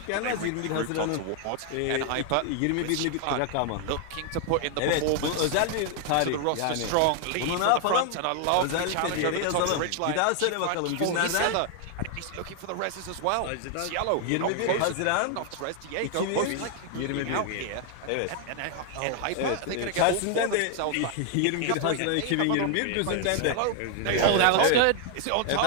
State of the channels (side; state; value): both; different; correlation 0.00